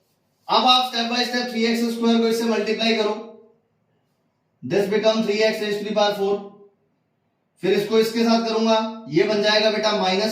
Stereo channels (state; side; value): identical; both; correlation 1.00